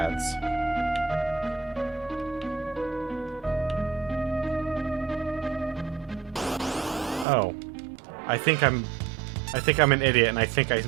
Oh. I think I'm an idiot, and I think I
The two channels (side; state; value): left; drops out; at 7.2 s